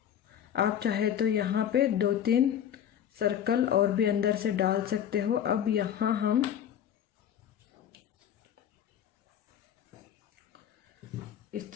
आप चाहे तो यहाँ पे 2-3 सर्कल और भी अंदर से डाल सकते हो। अब यहाँ हम इस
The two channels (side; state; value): right; quieter; 9.6 dB